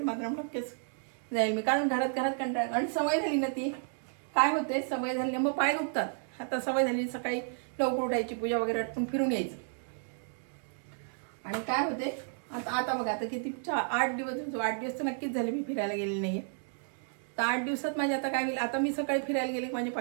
मात्र नक्कीच जाईल मी, कारण घरात कंटाळा आणि सवय झाली ना ती. काय होते, सवय झाली मग पाय दुखतात. आता सवय झाली सकाळी लवकर उठायची, पूजा वगैरे आटपून फिरून यायचं. आणि काय होते आता बघा, आता किती 8 दिवस तर नक्कीच झाले मी फिरायला गेलेली नाहीये. तर 8 दिवसात माझे आता काय होईल, आता मी सकाळी फिरायला गेले की माझे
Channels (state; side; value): silent; left; digital silence